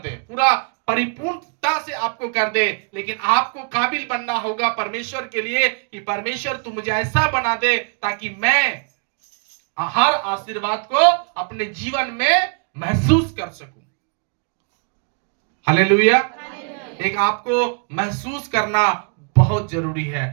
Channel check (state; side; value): quieter; left; 39.5 dB